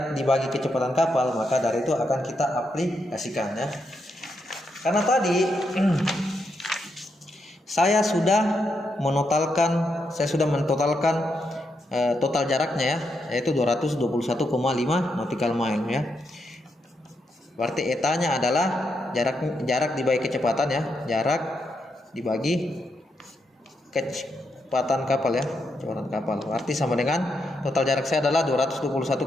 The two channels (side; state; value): both; normal; correlation 0.82